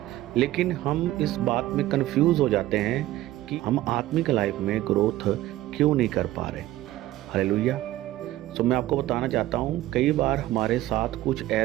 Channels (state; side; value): quieter; left; 15.5 dB